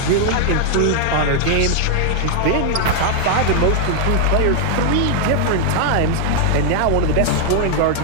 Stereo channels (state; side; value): different; both; correlation 0.00